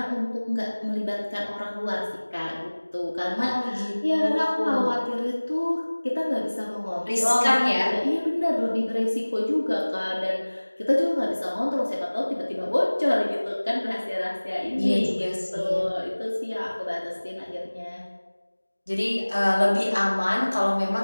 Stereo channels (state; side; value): inverted; both; correlation -1.00